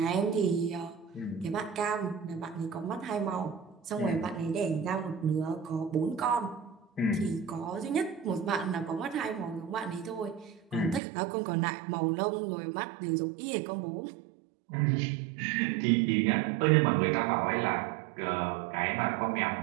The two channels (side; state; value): left; drops out; at 11.0 s